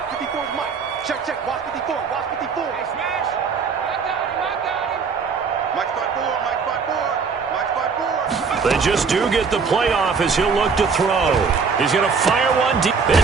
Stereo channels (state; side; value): quieter; left; 5.4 dB